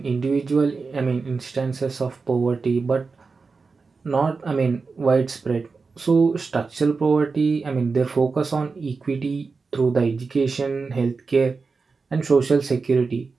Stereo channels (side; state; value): left; quieter; 4.5 dB